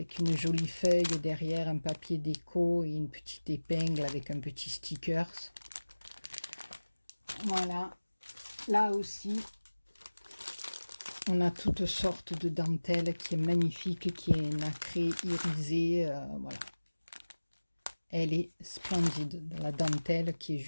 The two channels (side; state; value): both; inverted; correlation -1.00